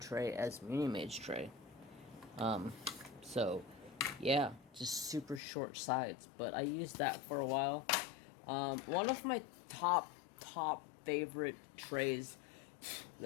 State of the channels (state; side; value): drops out; right; at 5.4 s